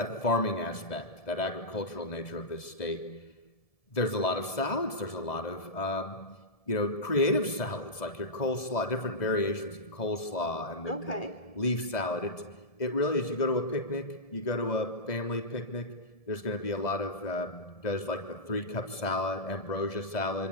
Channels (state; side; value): late; right; 1.7 ms